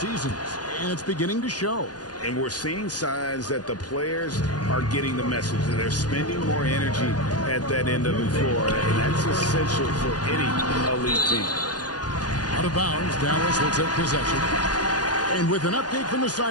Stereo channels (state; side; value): late; right; 0.69 ms